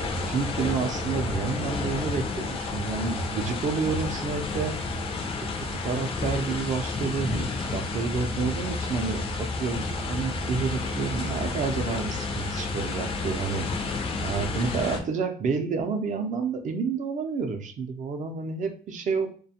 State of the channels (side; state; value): both; normal; correlation 0.52